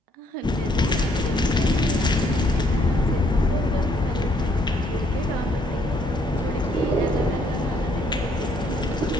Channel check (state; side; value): normal; both; correlation 0.68